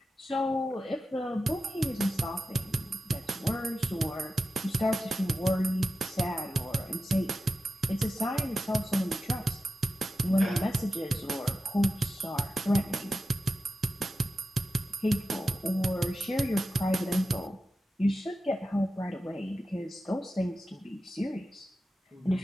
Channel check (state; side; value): normal; both; correlation 0.92